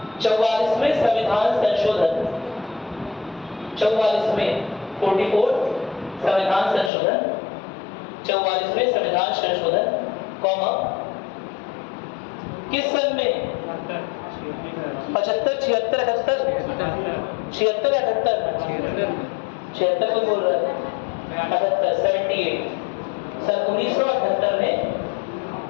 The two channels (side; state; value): right; drops out; at 6.9 s